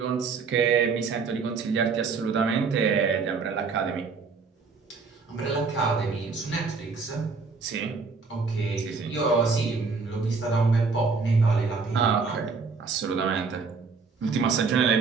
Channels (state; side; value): quieter; left; 4.8 dB